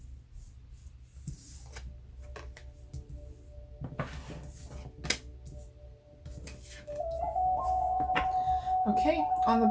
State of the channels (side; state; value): both; identical; correlation 1.00